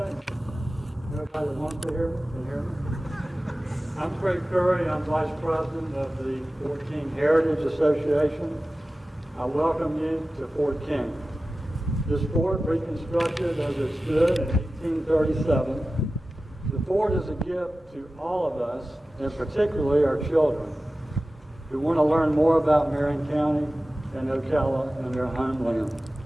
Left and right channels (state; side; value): normal; both; correlation 0.95